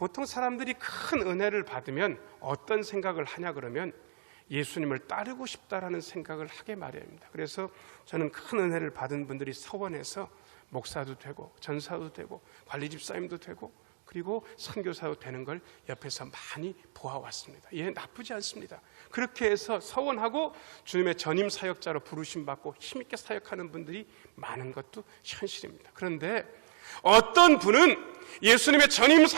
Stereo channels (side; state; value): left; silent; digital silence